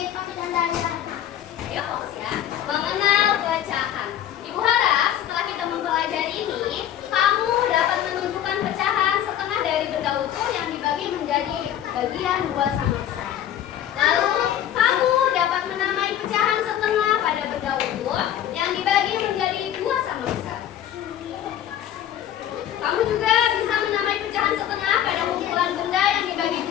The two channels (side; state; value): right; quieter; 11.0 dB